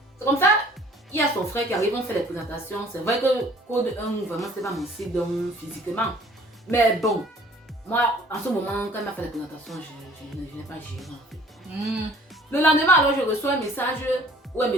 c'est comme ça. Il y a son frère qui arrive, on fait les présentations. C'est vrai que Code 1, vraiment, c'est pas mon style physiquement. Mais bon, moi, en ce moment, quand il m'a fait les présentations, je n'ai pas géré en fait. Le lendemain, alors, je reçois un message où elle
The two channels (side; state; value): both; normal; correlation 0.54